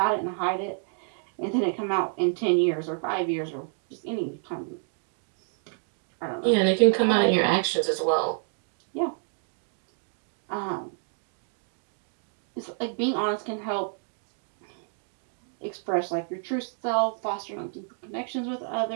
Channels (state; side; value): silent; left; 59 dB below the other